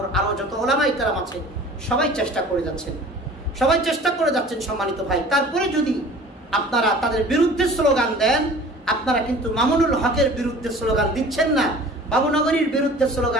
আরো যত ওলামায়ে কেরাম আছে সবাই চেষ্টা করে যাচ্ছেন, সম্মানিত ভাই। তারপরে যদি আপনারা তাদের বিরুদ্ধে স্লোগান দেন, আপনারা কিন্তু মামুনুল হকের বিরুদ্ধে স্লোগান দিচ্ছেন না, বাবুনগরীর বিরুদ্ধে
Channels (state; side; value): normal; both; correlation 0.45